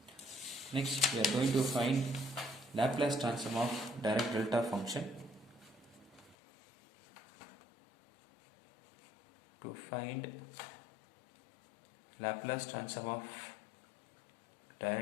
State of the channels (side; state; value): right; drops out; at 6.4 s